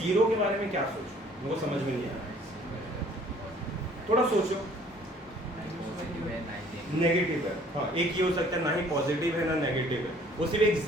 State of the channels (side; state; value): both; normal; correlation 0.56